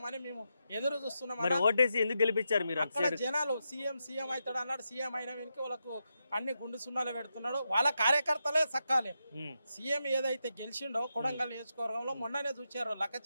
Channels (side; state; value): both; inverted; correlation -0.86